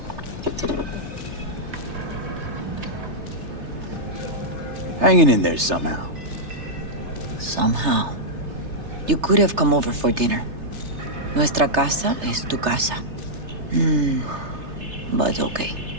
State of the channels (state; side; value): late; left; 3.3 ms